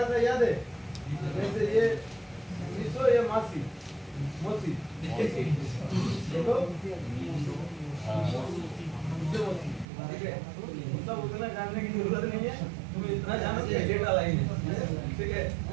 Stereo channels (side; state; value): left; drops out; at 9.9 s